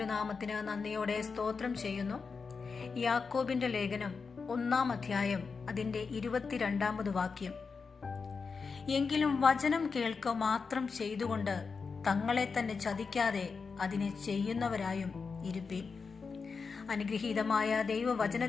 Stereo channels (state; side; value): quieter; right; 5.0 dB